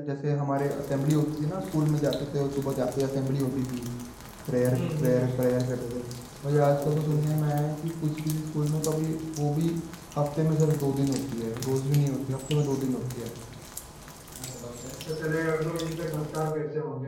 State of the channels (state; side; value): identical; both; correlation 1.00